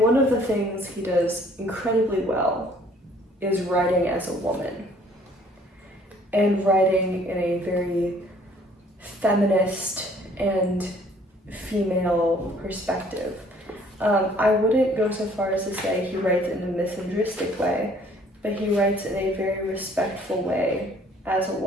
one of the things he does incredibly well is writing as a woman. And writing in a very feminist and female perspective. I wouldn't go so far as to say he writes in a misandristic way, but he writes in a very respectful way as a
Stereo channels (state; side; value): normal; both; correlation 0.58